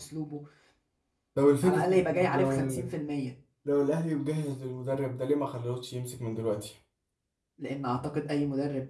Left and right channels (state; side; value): identical; both; correlation 1.00